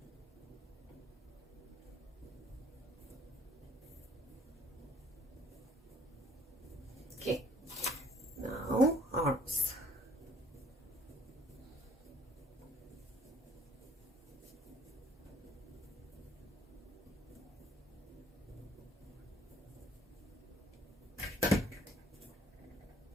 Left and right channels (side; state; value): both; normal; correlation 0.59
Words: Okay, now arms.